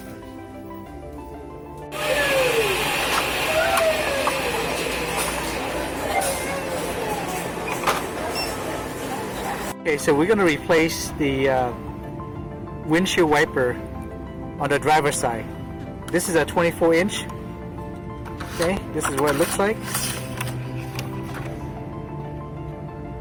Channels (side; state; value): both; identical; correlation 1.00